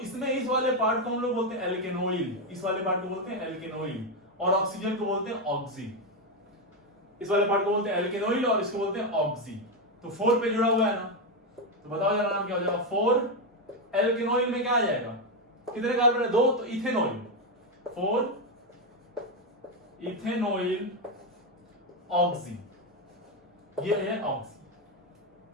इस वाले पार्ट को हम लोग बोलते हैं एल्केनोइल, इस वाले पार्ट को बोलते हैं एल्केनोइल, और ऑक्सीजन को बोलते हैं ऑक्सी। इस वाले पार्ट को बोलते हैं एल्केनोइल और इसको बोलते हैं ऑक्सी। तो 4 पे जुड़ा हुआ है ना, तो बताओ जरा नाम क्या हो जाएगा, 4 एल्केनोइल में क्या आ जाएगा, कितने कार्बन है, 2, तो इथेनॉइल, 4 इथेनॉइल ऑक्सी, ये है ऑक्सी।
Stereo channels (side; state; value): both; normal; correlation 0.07